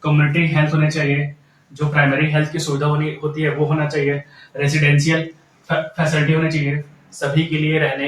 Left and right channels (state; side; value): identical; both; correlation 1.00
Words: कम्युनिटी हेल्थ होने चाहिए, जो प्राइमरी हेल्थ की सुविधा होती है वो होना चाहिए। रेजिडेंशियल फैसिलिटी होनी चाहिए, सभी के लिए